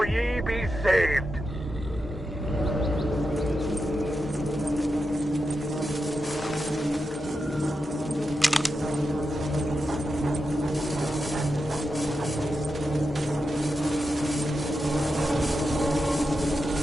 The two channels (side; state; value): both; normal; correlation 0.89